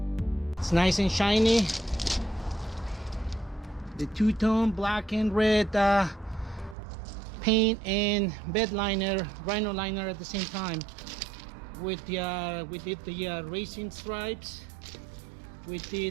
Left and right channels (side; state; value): left; drops out; at 6.8 s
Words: It's nice and shiny. The two-tone black and red paint and bed liner, rhino liner at the same time. We did the racing stripes. We